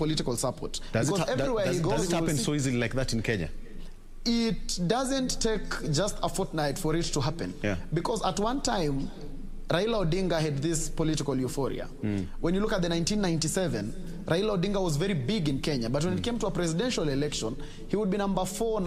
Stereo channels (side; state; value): both; identical; correlation 1.00